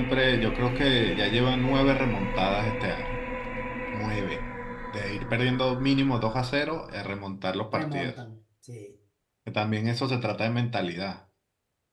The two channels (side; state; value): both; identical; correlation 1.00